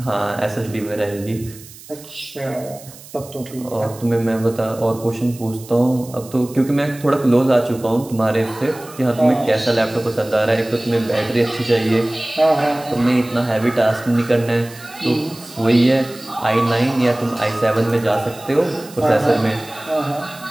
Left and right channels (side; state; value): right; noise; hiss, 19 dB below the sound